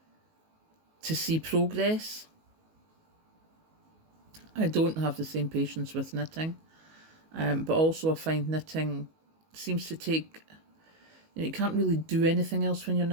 to see progress. I don't have the same patience with knitting, but also I find knitting seems to take, you know, you can't really do anything else when you're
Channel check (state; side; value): late; left; 19 ms